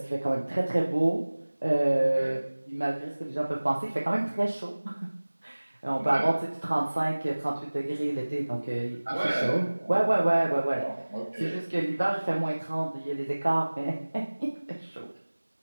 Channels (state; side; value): inverted; both; correlation -1.00